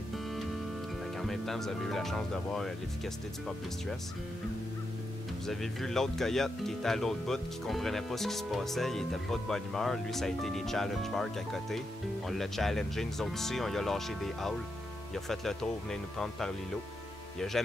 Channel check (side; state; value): both; normal; correlation 0.85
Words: En même temps, vous avez eu la chance de voir l'efficacité du pop distress. Vous avez vu l'autre coyote qui était à l'autre bout, qui comprenait pas ce qui se passait, il était pas de bonne humeur. Lui, ça a été les challenge marks à côté. On l'a challengé, nous autres aussi, on lui a lâché des howls. Il a fait le tour, venait nous prendre par l'îlot. Il a